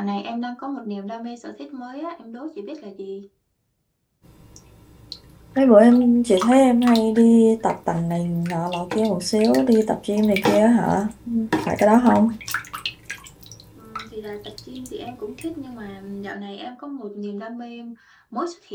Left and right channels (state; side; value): identical; both; correlation 1.00